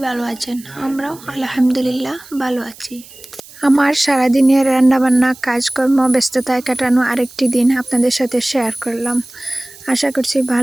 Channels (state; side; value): noise; right; hiss, 21 dB below the sound